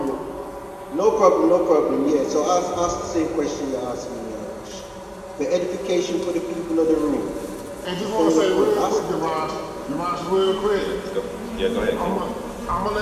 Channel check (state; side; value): identical; both; correlation 1.00